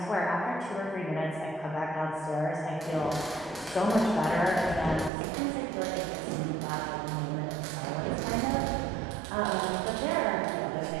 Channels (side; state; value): left; drops out; at 5.1 s